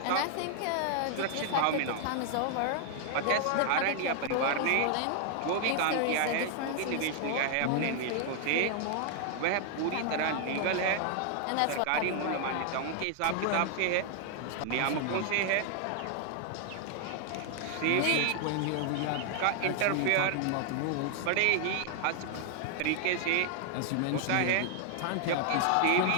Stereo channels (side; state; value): both; different; correlation 0.00